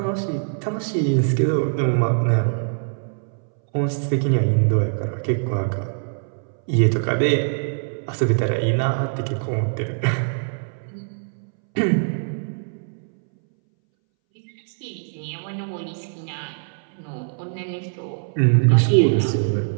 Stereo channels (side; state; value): left; silent; 62 dB below the other